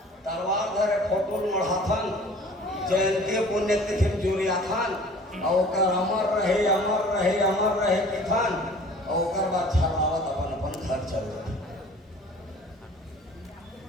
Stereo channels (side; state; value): both; normal; correlation 0.48